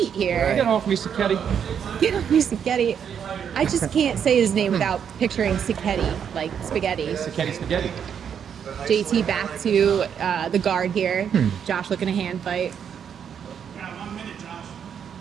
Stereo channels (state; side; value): quieter; left; 8.0 dB